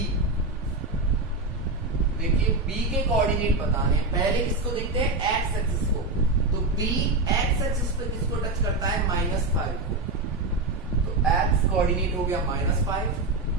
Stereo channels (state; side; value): quieter; left; 3.1 dB